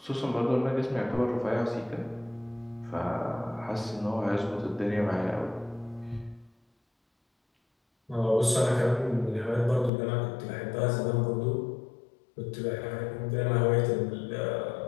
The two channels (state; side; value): drops out; right; at 9.9 s